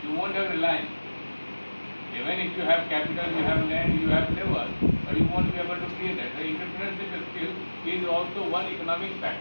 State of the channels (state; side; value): inverted; both; correlation -1.00